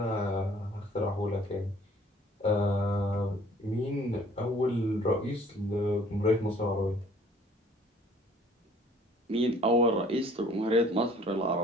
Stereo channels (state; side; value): normal; both; correlation 0.55